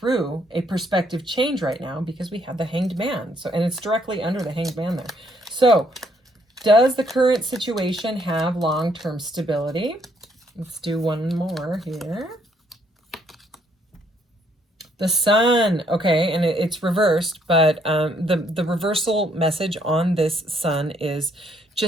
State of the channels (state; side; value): normal; both; correlation 0.69